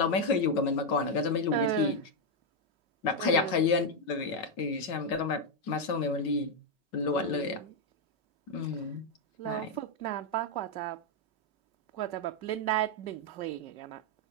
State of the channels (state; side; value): late; right; 5.3 ms